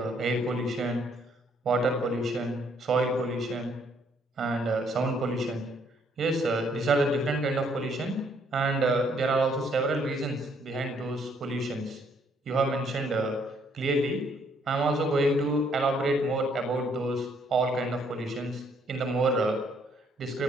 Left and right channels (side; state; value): both; normal; correlation 0.68